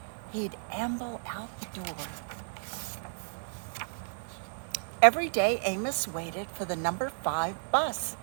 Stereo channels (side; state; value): left; silent; 55 dB below the other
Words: he'd amble out the door. Every day, Amos waited for the number 5 bus.